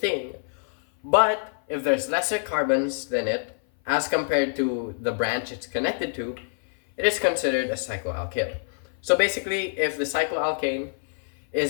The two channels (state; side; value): silent; right; 56 dB below the other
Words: but if there's lesser carbons than it, as compared to the branch it's connected to, it is considered a cycloalkyl. So basically, if the cycloalkane